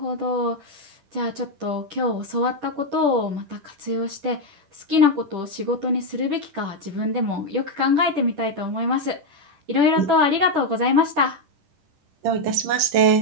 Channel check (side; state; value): left; late; 10 ms